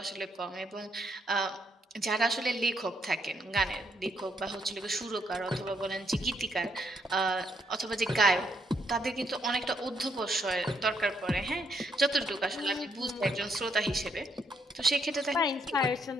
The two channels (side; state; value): both; normal; correlation 0.73